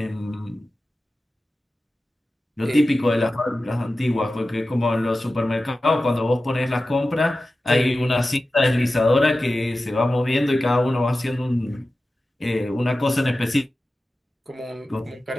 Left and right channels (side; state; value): both; normal; correlation 0.95